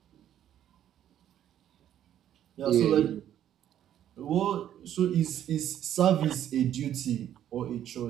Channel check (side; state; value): left; quieter; 11.0 dB